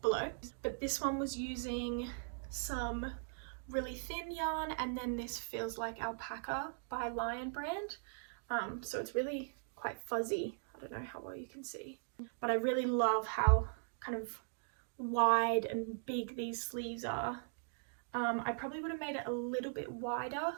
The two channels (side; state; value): left; silent; digital silence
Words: below. But this one was using some really thin yarn, and then this feels like alpaca by Lion brand. So it's really quite fuzzy. I don't know how well you can see, but I really love how kind of wide and big these sleeves are. I probably would have made it a little bit wider,